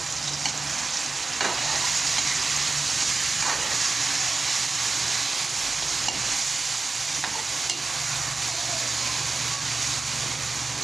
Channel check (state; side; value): quieter; left; 3.8 dB